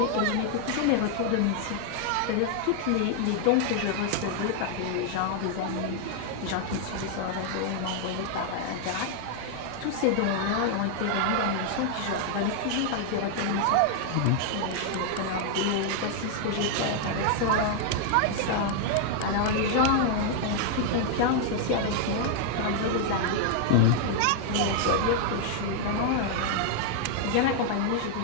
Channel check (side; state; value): both; different; correlation 0.00